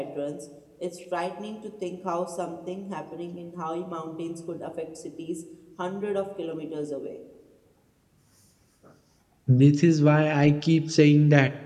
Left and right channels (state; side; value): identical; both; correlation 1.00